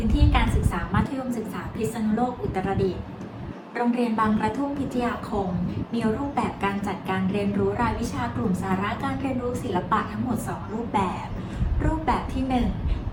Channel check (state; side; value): identical; both; correlation 1.00